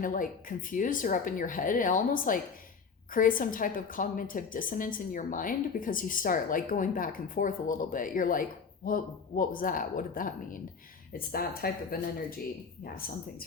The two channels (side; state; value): right; quieter; 5.5 dB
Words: of like confused or up in your head, and almost like create some type of cognitive dissonance in your mind, because you start like going back and forth a little bit. You're like, what was that? What did that mean? It's that type of an energy. Yeah, something's